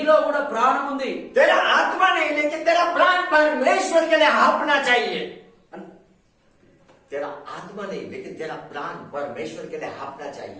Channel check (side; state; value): both; identical; correlation 1.00